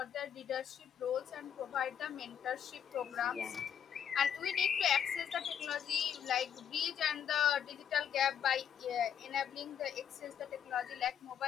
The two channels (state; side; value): quieter; right; 8.8 dB